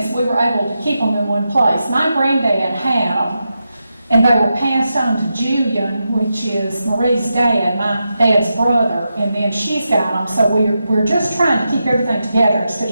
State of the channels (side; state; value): both; inverted; correlation -0.88